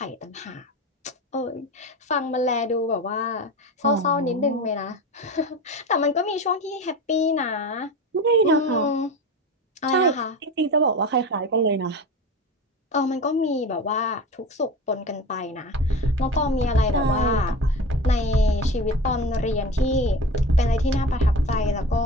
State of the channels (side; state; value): both; normal; correlation 0.30